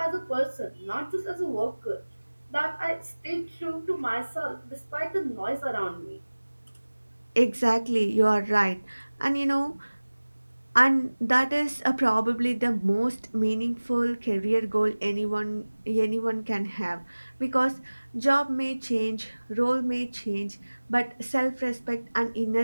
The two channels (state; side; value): inverted; both; correlation -1.00